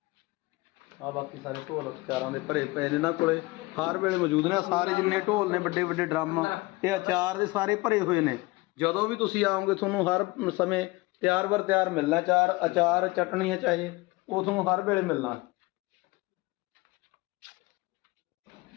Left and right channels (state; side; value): quieter; right; 22.2 dB